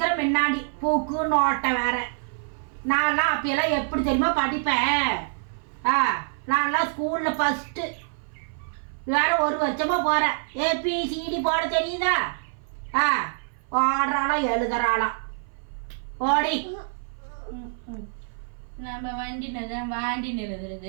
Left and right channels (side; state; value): left; silent; 56 dB below the other